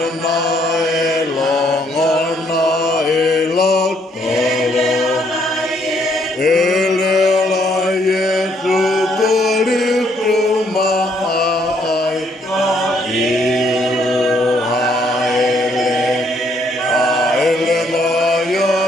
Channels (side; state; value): both; normal; correlation 0.69